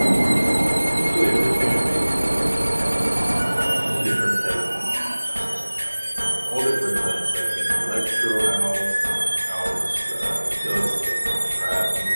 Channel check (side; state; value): both; inverted; correlation -1.00